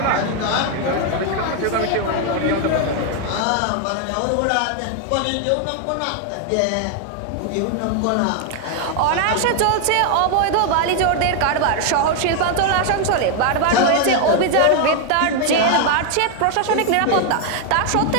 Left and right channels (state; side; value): different; both; correlation 0.00